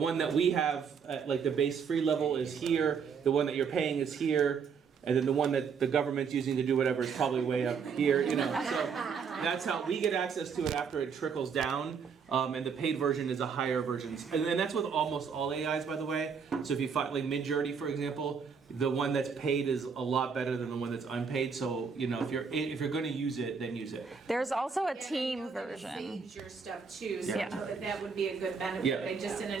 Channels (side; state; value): left; quieter; 6.1 dB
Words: that we have at like the base free level is here, the one that you're paying is here, and then the one that the government's using to do whatever is probably way up here, So that's how we get access to it after it trickles down, and the paid version is a higher version. And that's with almost all AIs, by the way. So if you find like Midjourney, for example, the one that's paid is a lot better than the one that's unpaid. So if you're going to use it, then use it. There's also a And I team know that it version. saves your stuff too, so Yeah. that would be a good benefit. Yeah. I just